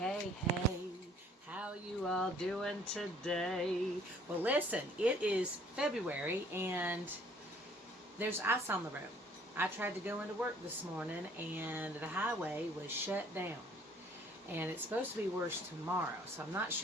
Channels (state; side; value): normal; both; correlation 0.58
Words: hey. How you all doing today? Well, listen, it is February and there's ice on the road. I tried to go into work this morning and the highway was shut down. And it's supposed to be worse tomorrow. So I'm not